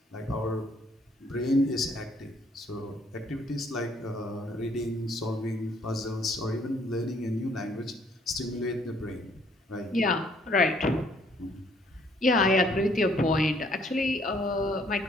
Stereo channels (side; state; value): both; normal; correlation 0.64